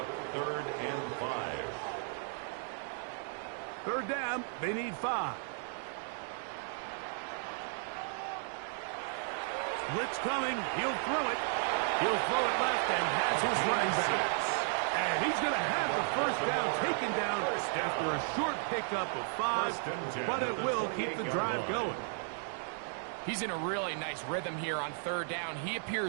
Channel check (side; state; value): left; silent; 55 dB below the other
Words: 3rd and 5. 3rd down. They need 5. Blitz coming. He'll throw it. He'll throw it left and has his running back. And he's going to have the 1st down taken down after a short pickup of 5. But it will keep the drive going. He's in a really nice rhythm here on 3rd down. He